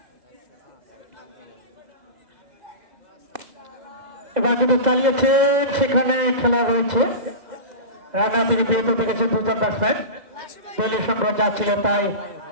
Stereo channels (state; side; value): late; left; 2.0 ms